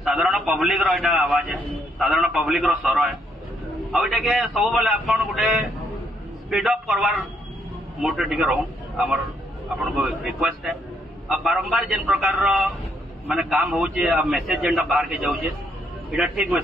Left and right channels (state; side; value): normal; both; correlation 0.73